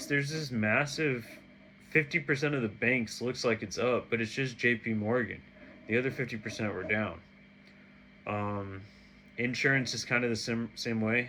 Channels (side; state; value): both; identical; correlation 1.00